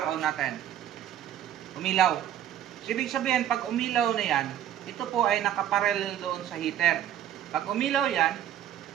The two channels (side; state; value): left; quieter; 11.0 dB